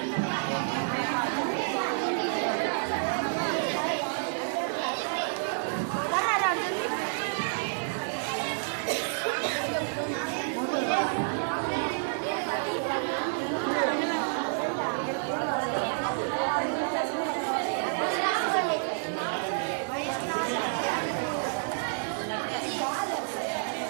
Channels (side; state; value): left; silent; digital silence